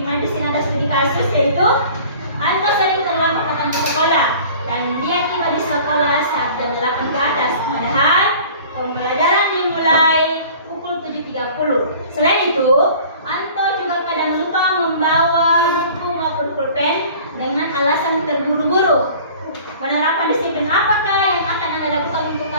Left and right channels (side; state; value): both; inverted; correlation -0.46